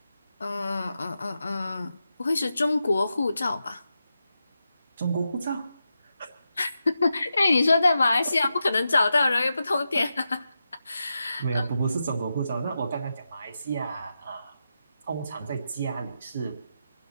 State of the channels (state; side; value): inverted; both; correlation -0.88